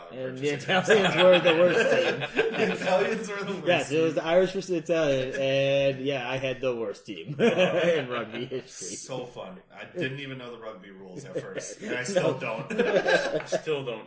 And the Italians were the worst team. The Italians were the worst. Yes, it was the Irish versus the Italian, and I had the worst team in rugby history. So fun. I didn't even know the rugby rules at first, and I still don't. I still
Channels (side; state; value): both; identical; correlation 1.00